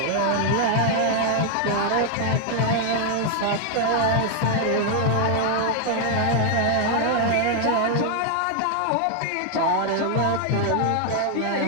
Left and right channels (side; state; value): both; different; correlation 0.00